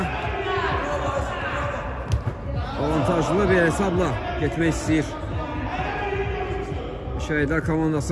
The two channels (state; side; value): identical; both; correlation 1.00